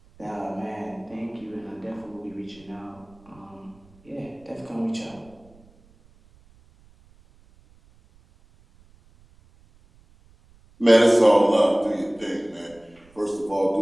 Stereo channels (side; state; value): right; noise; rumble, 29 dB below the sound